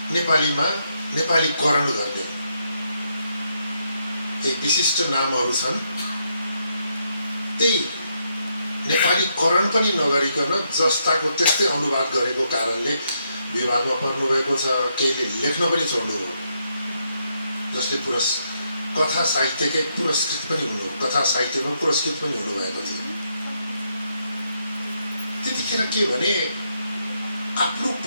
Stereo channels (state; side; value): inverted; both; correlation -0.78